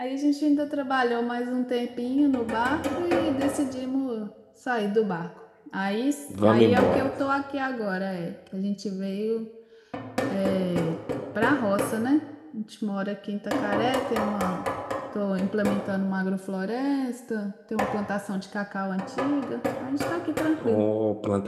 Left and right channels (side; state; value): both; identical; correlation 1.00